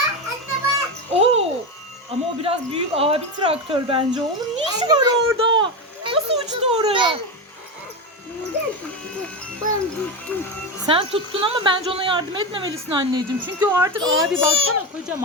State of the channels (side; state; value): both; normal; correlation 0.17